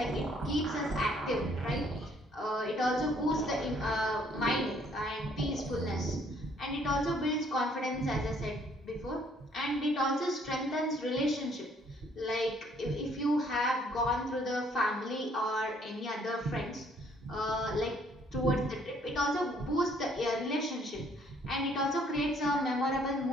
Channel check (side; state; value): both; normal; correlation 0.63